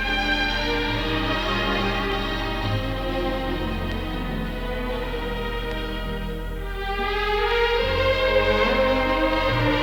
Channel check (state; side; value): identical; both; correlation 1.00